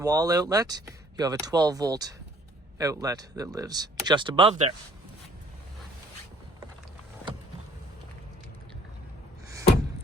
outlet. You have a 12-volt outlet that lives just above there.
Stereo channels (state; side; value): normal; both; correlation 0.57